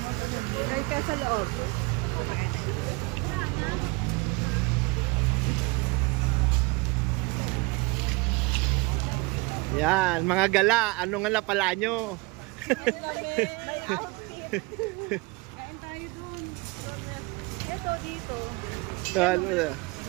Ay, ka sa loob. Pagkakita. Yan, mga gala. Ano nga na pala nyo? Ito, dito.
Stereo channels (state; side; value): quieter; left; 25.7 dB